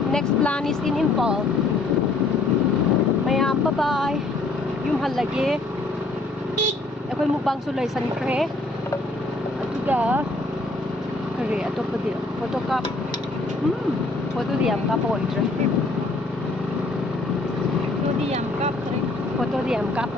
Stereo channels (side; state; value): right; quieter; 3.1 dB